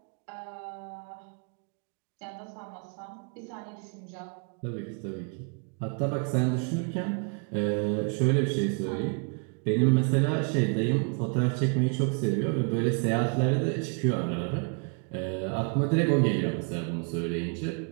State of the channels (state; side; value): quieter; left; 38.3 dB